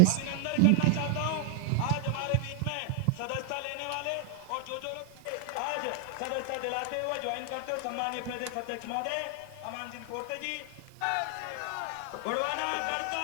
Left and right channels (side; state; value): both; different; correlation 0.00